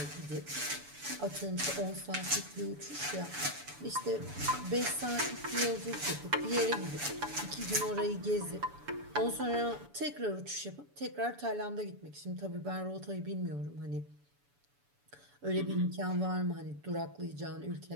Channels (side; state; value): left; late; 7.0 ms